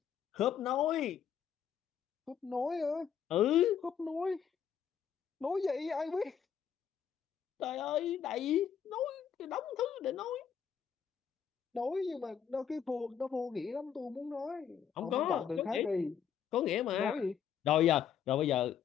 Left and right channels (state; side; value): quieter; right; 8.2 dB